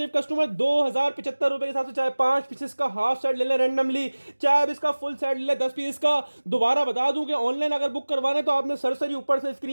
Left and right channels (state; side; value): inverted; both; correlation -1.00